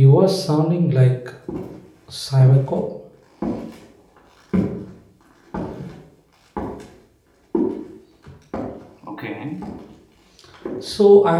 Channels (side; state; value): both; identical; correlation 1.00